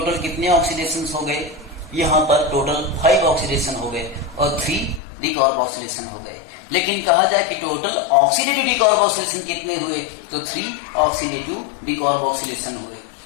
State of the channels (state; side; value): drops out; right; at 5.0 s